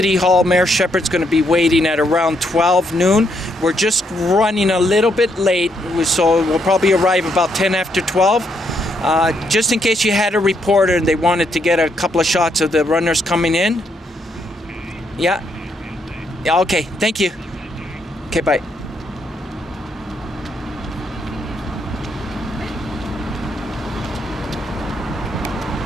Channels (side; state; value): both; normal; correlation 0.75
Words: Hall. Mayor Shepherd's going to be waiting at around 12 noon. We're just running a little bit late, so we'll probably arrive about 10 after 12. Just in case you had a reporter and they wanted to get a couple of shots of the runners coming in. Yeah? Yeah, okay, thank you. Okay, bye.